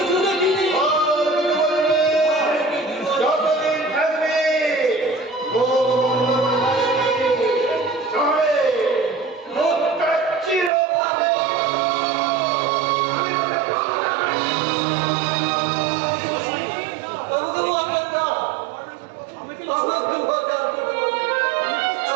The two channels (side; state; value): left; drops out; at 10.7 s